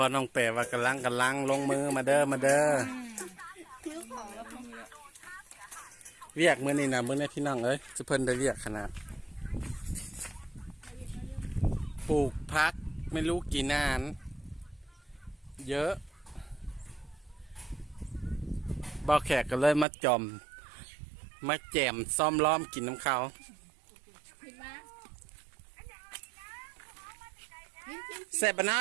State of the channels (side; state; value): left; drops out; at 19.9 s